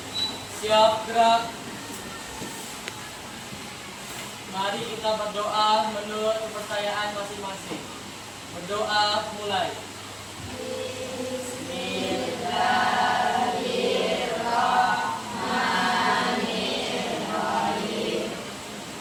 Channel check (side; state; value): both; identical; correlation 1.00